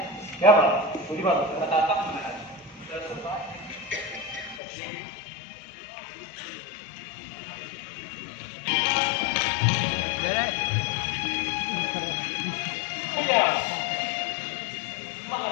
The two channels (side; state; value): right; drops out; at 4.6 s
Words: क्या बात पूरी बात बताता हूँ